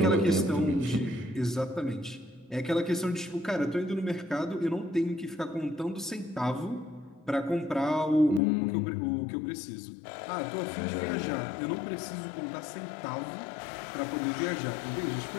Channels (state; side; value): drops out; right; at 8.4 s